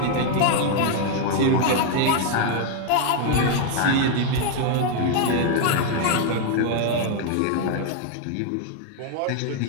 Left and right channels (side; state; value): both; different; correlation 0.00